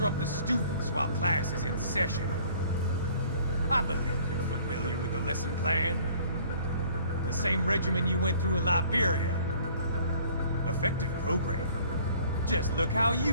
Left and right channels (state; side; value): inverted; both; correlation -0.55